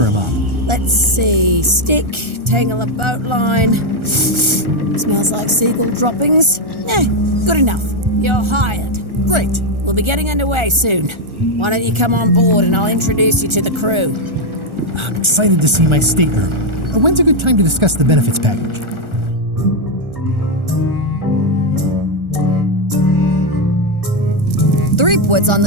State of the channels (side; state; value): left; late; 1.4 ms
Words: a mop? Let's see. Stick, tangle a boat line. Smells like seagull droppings. Good enough. You're hired. Great. We'll be getting underway soon. Why don't you come on board and I'll introduce you to the crew. I'm excited to see my stateroom. When's a good time to discuss the benefits package? Threepwood's on